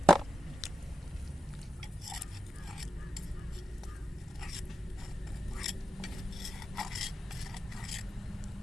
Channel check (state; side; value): normal; both; correlation 0.91